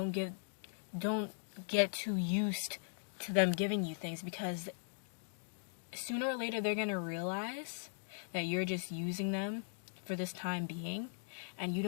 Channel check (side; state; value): right; silent; digital silence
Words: get too used to them giving you things, because sooner or later they're going to realize that you're just using them for this time being. And you